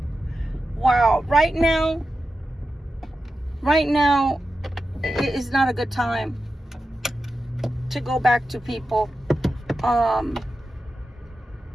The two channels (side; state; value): both; normal; correlation 0.91